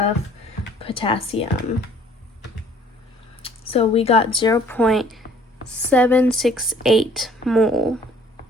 potassium. So we got 0.768 mole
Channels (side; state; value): both; normal; correlation 0.57